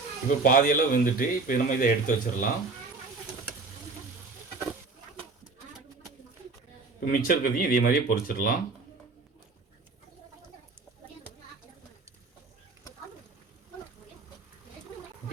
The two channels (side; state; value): left; quieter; 3.9 dB